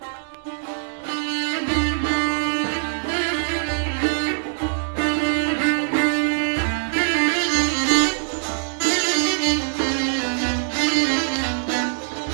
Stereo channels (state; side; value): silent; left; digital silence